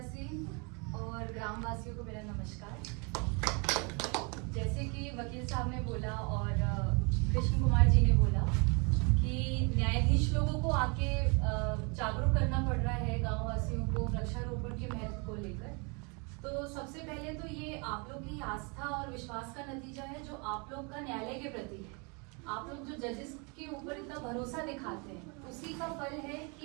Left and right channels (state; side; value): quieter; left; 32.7 dB